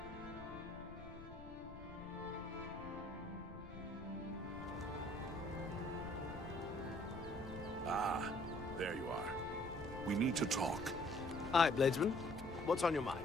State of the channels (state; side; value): noise; left; rumble, 13 dB below the sound